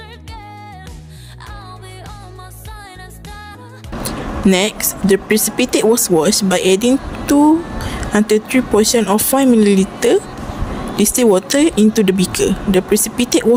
Next, the precipitate was washed by adding 2 until 3 portions of 5 ml distilled water into the beaker. The precipitate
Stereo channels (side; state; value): both; identical; correlation 1.00